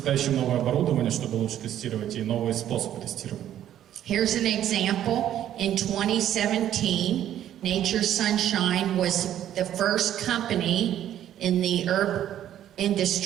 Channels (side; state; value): left; quieter; 11.3 dB